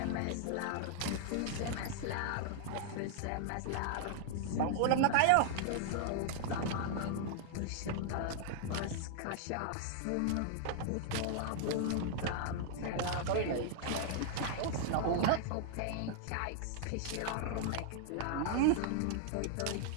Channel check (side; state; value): both; different; correlation -0.01